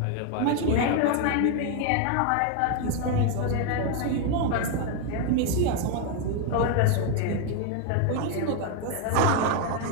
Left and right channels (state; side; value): different; both; correlation 0.01